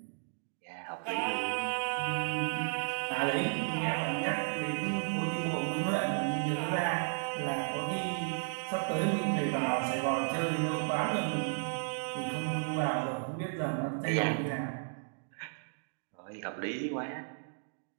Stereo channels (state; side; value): silent; left; digital silence